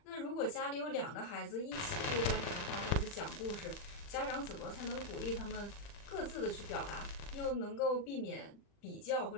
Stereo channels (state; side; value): late; right; 40 ms